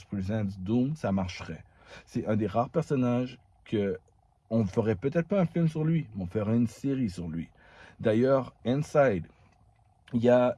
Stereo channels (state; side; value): identical; both; correlation 1.00